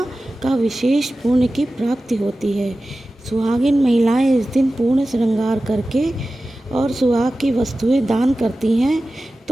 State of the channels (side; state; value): both; normal; correlation 0.95